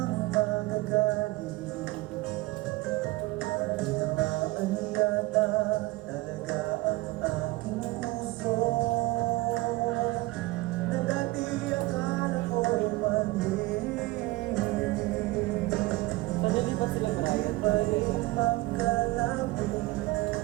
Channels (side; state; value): left; quieter; 20.2 dB